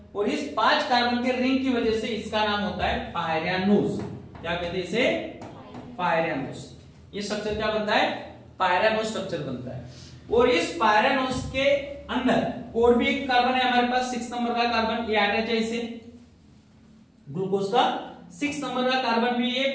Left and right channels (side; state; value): both; identical; correlation 1.00